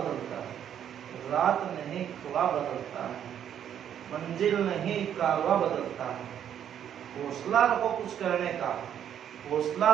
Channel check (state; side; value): quieter; left; 9.5 dB